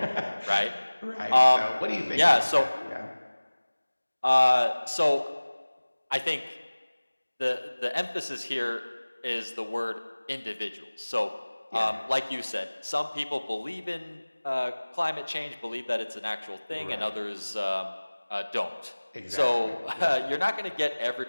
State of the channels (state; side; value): inverted; both; correlation -1.00